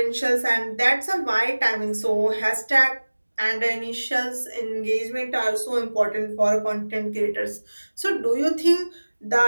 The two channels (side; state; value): both; inverted; correlation -1.00